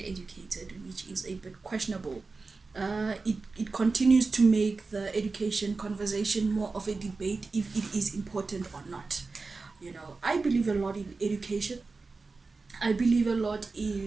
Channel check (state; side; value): quieter; left; 4.0 dB